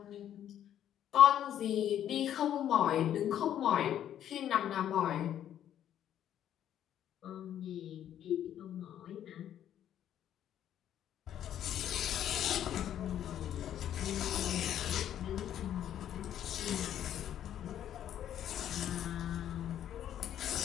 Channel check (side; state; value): right; quieter; 10.7 dB